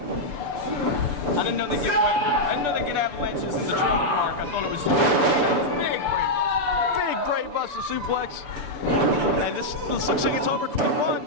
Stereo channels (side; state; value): left; late; 6.8 ms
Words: I didn't know they get avalanches in the trailer park. I thought it was Big brain buster suplex. And this looks like it's over quick. 1,